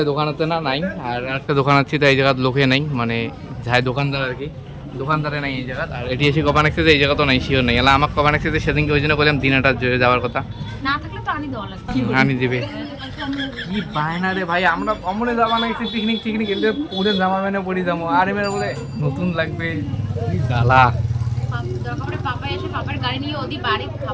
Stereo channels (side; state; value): both; identical; correlation 1.00